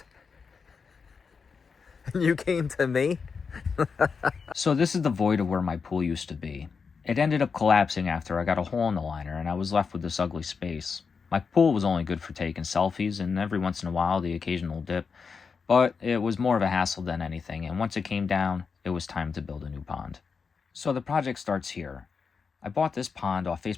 And you came to me? So this is the void of where my pool used to be. It ended up collapsing after I got a hole in the liner and I was left with this ugly space. My pool was only good for taking selfies and every once in a while the occasional dip, but it was more of a hassle than anything, and once it came down, it was time to build a new pond. So the project starts here. I bought this pond off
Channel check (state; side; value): quieter; right; 5.4 dB